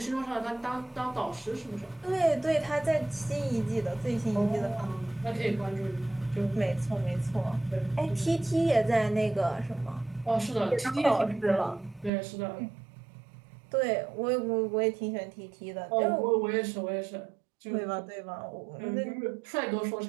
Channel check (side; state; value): left; drops out; at 12.1 s